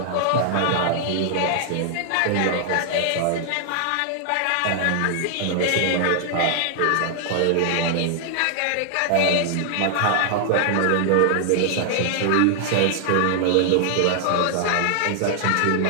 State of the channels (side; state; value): both; different; correlation 0.00